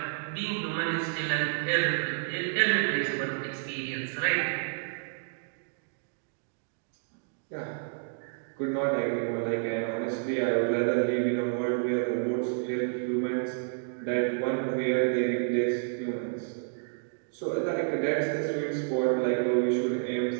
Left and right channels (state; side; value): silent; left; digital silence